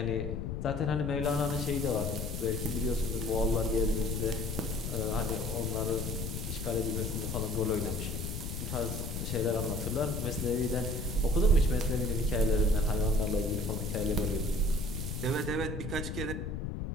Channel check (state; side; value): noise; left; rumble, 4 dB below the sound